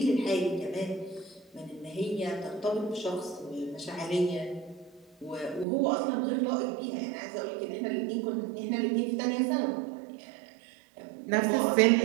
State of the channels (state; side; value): drops out; left; at 5.7 s